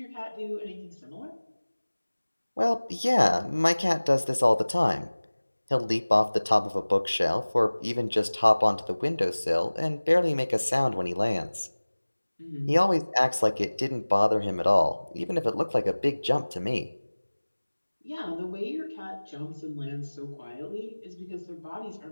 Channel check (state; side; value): inverted; both; correlation -1.00